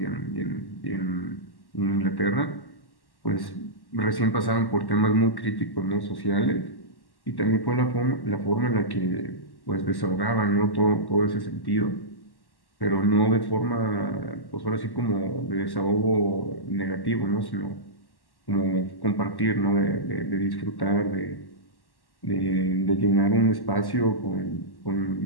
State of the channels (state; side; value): late; right; 1.1 ms